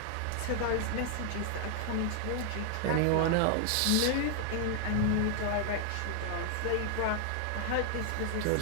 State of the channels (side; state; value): both; different; correlation 0.00